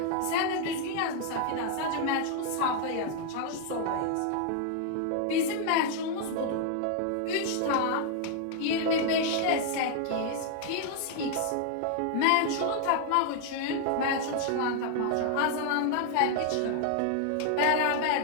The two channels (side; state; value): both; different; correlation 0.00